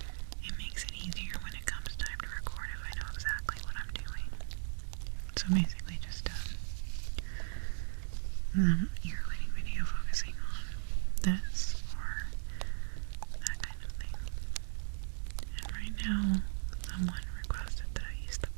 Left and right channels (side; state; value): left; silent; digital silence